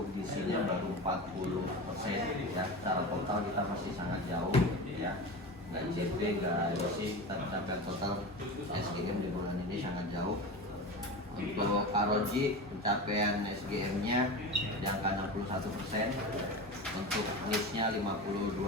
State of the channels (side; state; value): both; normal; correlation 0.27